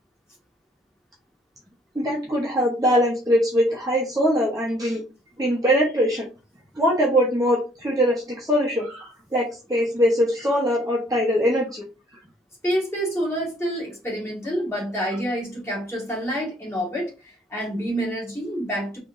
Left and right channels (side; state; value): both; normal; correlation 0.62